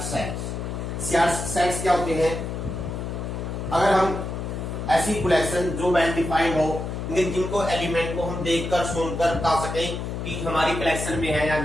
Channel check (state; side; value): noise; left; hum, 5 dB below the sound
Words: सेट्स क्या होते हैं? अगर हम ऐसी कलेक्शन जो वेल डिफाइंड हो, जिनको एलिमेंट को हम देखकर सुनकर बता सकें कि हमारी कलेक्शन में है या